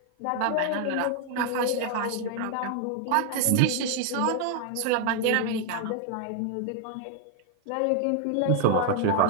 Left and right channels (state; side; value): different; both; correlation 0.00